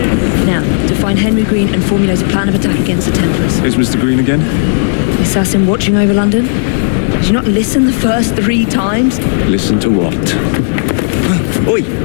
Now, to find Henry Green and formulate a plan of attack against the Templars. Is Mr. Green again? The assassin watching over London? Did you not listen the first 3 times? Listen to what? Oi,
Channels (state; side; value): silent; right; digital silence